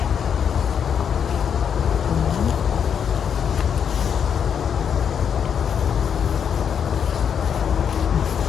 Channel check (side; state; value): right; quieter; 7.7 dB